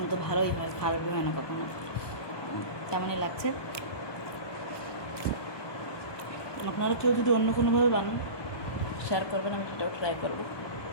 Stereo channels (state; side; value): late; right; 1.2 ms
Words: তো ভালোই হয়, খারাপই হয় না কখনো। তেমনই লাগছে। আপনারা কেউ যদি অন্য কোনোভাবে বানান শেয়ার করবেন, আমি সেটাও ট্রাই করবো।